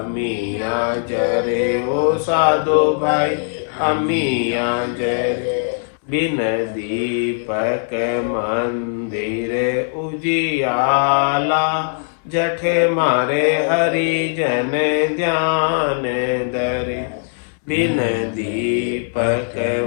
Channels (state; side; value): silent; right; digital silence